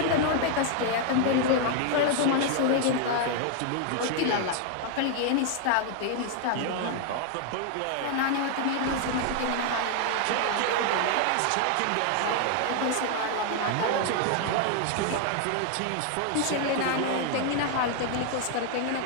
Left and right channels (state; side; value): different; both; correlation 0.00